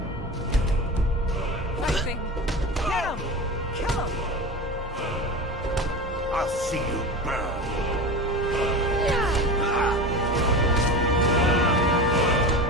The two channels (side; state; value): both; normal; correlation 0.28